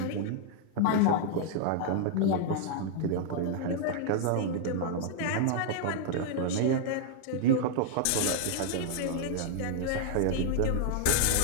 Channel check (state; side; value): different; both; correlation 0.00